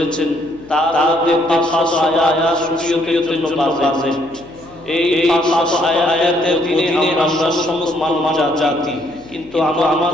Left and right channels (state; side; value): noise; left; hum, 25 dB below the sound